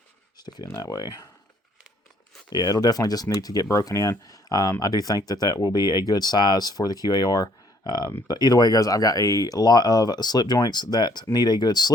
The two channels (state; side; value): normal; both; correlation 0.63